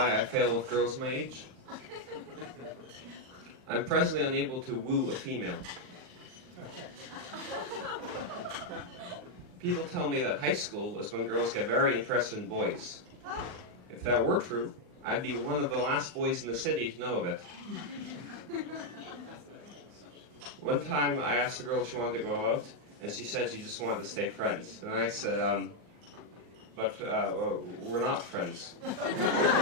I fail with girls my age. I'm presently unable to woo a female. People tell me that high school is when girls get very interested in boys. If that were true, I'd be one of the last boys in the city to know of it. One time I asked the girl if she wanted to go out, and she said she just wanted to stay friends. And I said, but we're not friends.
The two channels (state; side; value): late; left; 39 ms